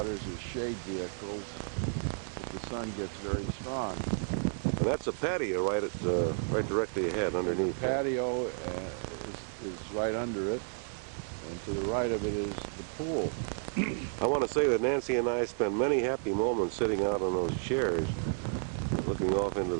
as shade vehicles if the sun gets very strong. And that's a patio right directly ahead underneath. The patio is right under it, and to the right of it is the pool. I want to say that Nancy and I spent many happy moments sitting out on those chairs, looking off into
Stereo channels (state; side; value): silent; left; digital silence